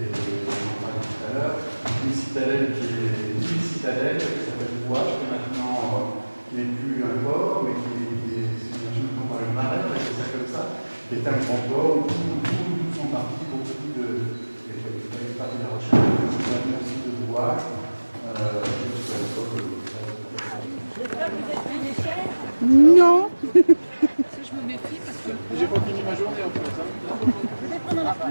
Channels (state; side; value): inverted; both; correlation -1.00